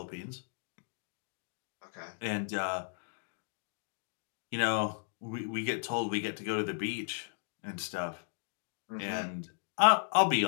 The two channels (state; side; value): silent; right; digital silence